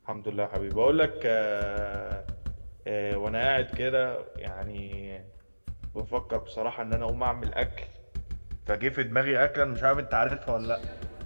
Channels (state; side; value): inverted; both; correlation -1.00